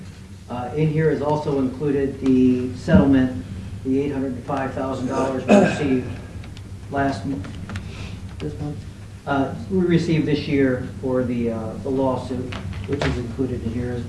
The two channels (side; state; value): both; identical; correlation 1.00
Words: In here is also included the settlement, the $805,000 we received this month? We received this year for the lawsuit, which is included in here